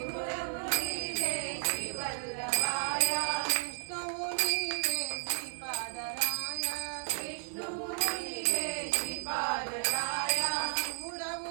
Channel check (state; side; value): silent; left; 55 dB below the other